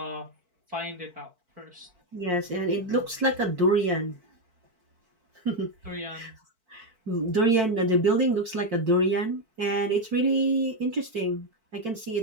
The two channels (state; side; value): late; left; 4.5 ms